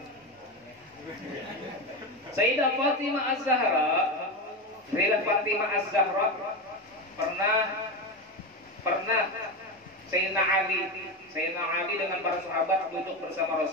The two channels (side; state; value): both; normal; correlation 0.18